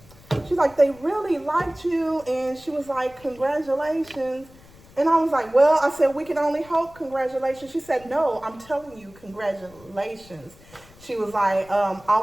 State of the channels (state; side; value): noise; left; rumble, 24 dB below the sound